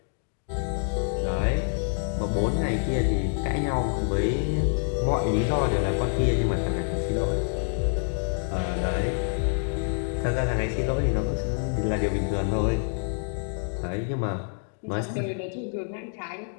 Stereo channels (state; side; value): silent; right; 60 dB below the other